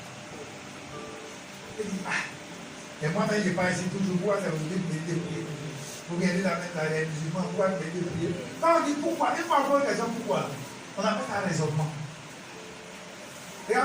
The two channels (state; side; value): identical; both; correlation 1.00